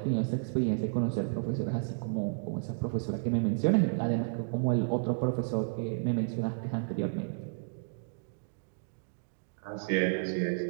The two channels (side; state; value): left; silent; digital silence